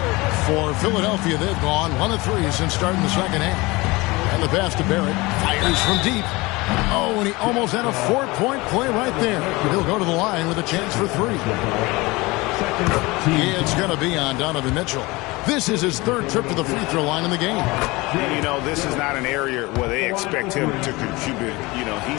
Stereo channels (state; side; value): quieter; right; 22.8 dB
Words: For Philadelphia, they've gone 1 of 3 since starting the second half. And the pass to Barrett. Fires from deep. Oh, and he almost had a 4-point play right there. He'll go to the line with a chance for 3. It's going to be on Donovan Mitchell. This is his 3rd trip to the free throw line in the game. You know, this is not an area where they expect him to contribute. You know,